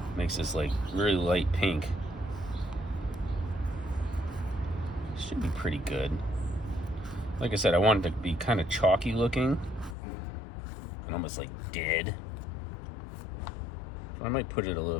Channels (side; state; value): right; drops out; at 10.0 s